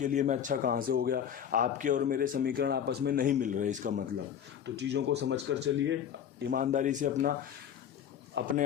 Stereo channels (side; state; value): right; quieter; 8.9 dB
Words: लिए मैं अच्छा कहाँ से हो गया? आपके और मेरे समीकरण आपस में नहीं मिल रहे इसका मतलब। तो चीज़ों को समझ कर चलिए, ईमानदारी से अपने